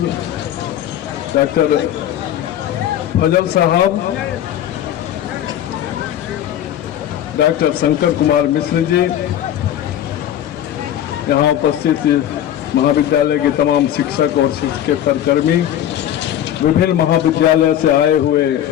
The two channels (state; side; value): quieter; right; 11.2 dB